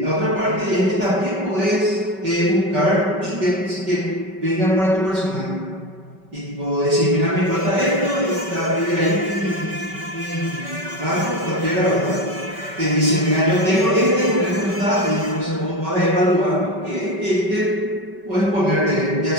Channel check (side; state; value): left; late; 5.2 ms